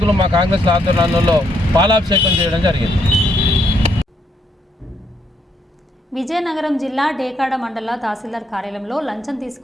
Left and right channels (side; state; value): both; normal; correlation 0.74